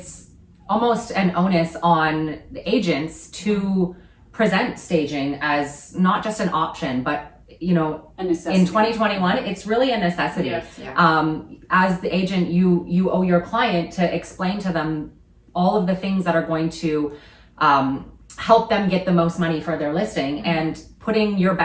almost an onus on the agents to present staging as not just an option, but A necessity. in 2021, it's really a necessity. Yes. As the agent, you owe your client to explain to them all of the things that are going to help them get the most money for their listing, and putting your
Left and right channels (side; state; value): both; identical; correlation 1.00